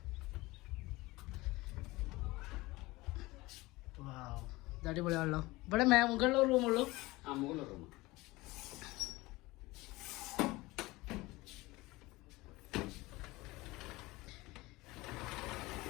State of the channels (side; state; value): right; quieter; 20.9 dB